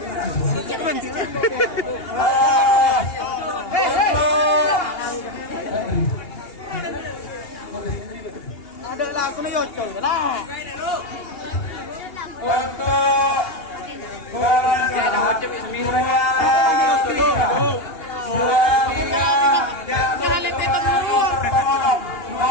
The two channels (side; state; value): right; late; 2.8 ms